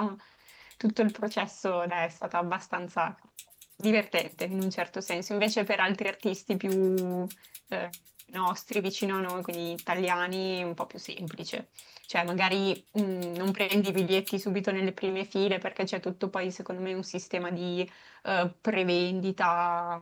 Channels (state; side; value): identical; both; correlation 1.00